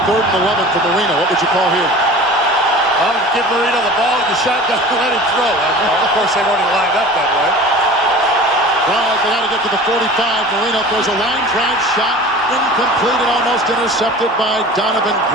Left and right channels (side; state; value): both; normal; correlation 0.40